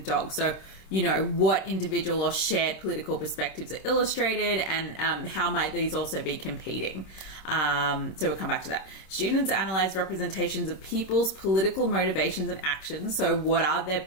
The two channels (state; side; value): late; right; 26 ms